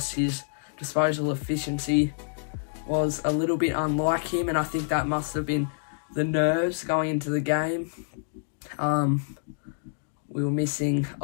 his disposal efficiency was a little bit unlike him, and I think that must have been the nerves going into the game. We were missing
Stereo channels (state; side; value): silent; right; digital silence